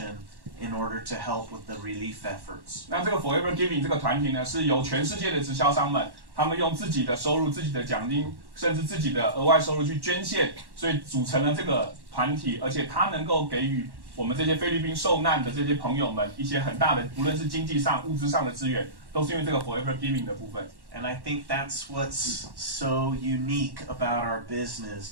in order to help with the relief efforts. 那这个 Forever Giving 这个团体呢，是由全世界的直销商们，他们用自己的收入、自己的奖金，甚至自己的额外收入去捐献，所以组成了这个团体，而且它能够给予我们这些菲律宾受难的这些朋友们一些很大的，无论是经济上、物质上的资源，都是因为这个 Forever Giving 的部分。And I think that's what's so unique about our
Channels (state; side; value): late; left; 1.1 ms